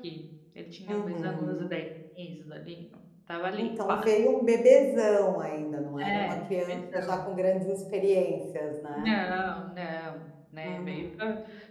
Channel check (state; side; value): identical; both; correlation 1.00